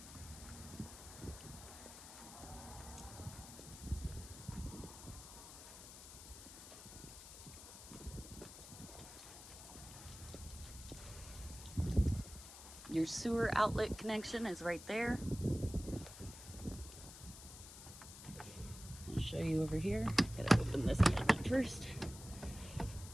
Your sewer outlet connection is right there. I'll show you over here. Gotta open this cabinet first.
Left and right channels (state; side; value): noise; left; hiss, 14 dB below the sound